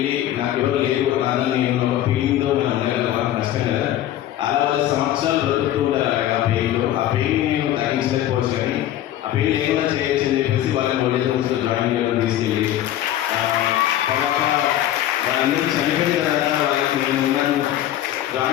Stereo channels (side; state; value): right; quieter; 12.6 dB